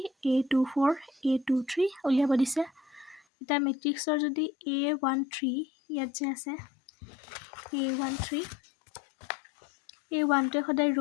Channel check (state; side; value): drops out; right; at 3.2 s